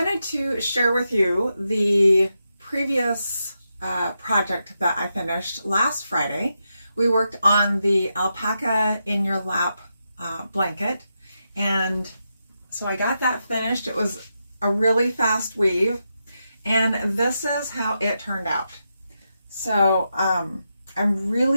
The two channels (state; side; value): inverted; both; correlation -0.86